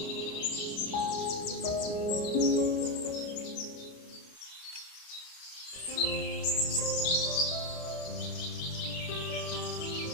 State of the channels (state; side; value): late; right; 29 ms